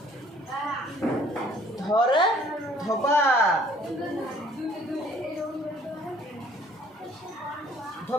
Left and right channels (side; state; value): both; normal; correlation 0.58